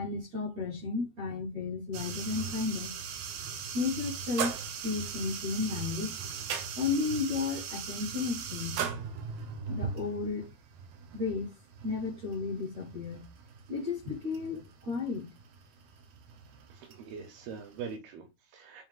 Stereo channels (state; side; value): late; left; 13 ms